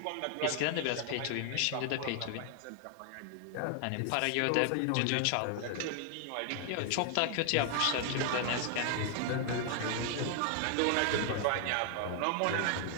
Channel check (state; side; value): different; both; correlation 0.00